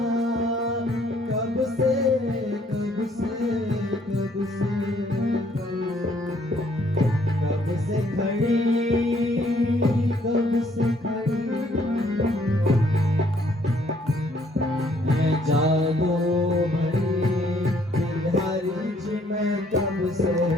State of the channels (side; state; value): both; normal; correlation 0.65